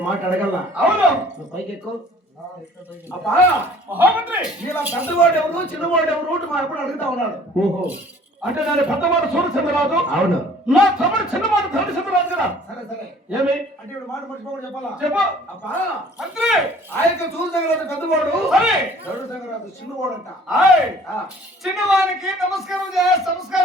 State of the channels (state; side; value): normal; both; correlation 0.53